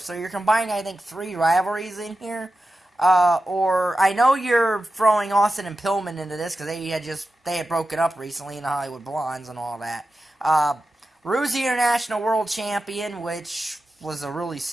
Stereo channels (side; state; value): both; normal; correlation 0.92